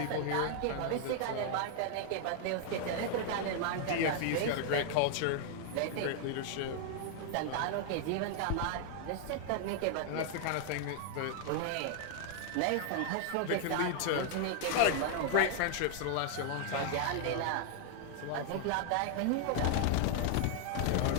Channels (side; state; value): both; different; correlation 0.00